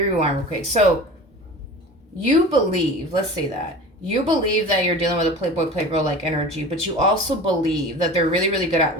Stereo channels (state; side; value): normal; both; correlation 0.37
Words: real quick. So, you believe, let's say that, you believe that you're dealing with a playboy like energy, but you also believe that they're really, really good at